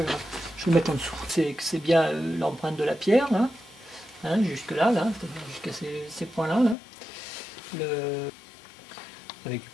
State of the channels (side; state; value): right; drops out; at 6.8 s